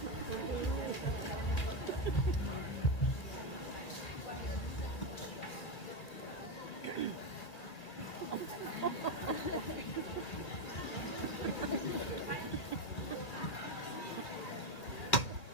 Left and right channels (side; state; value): right; late; 2.6 ms